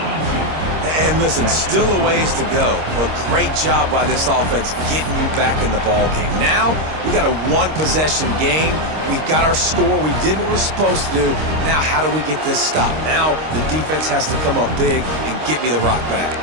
And listen, still a ways to go, but great job by this offense getting you back in the ball game. Now, we got a 1-possession game. We got our score. We did what we're supposed to do. Now, how do we get this stopped? Now, the defense has to come up big and get me the rock back.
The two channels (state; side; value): late; left; 26 ms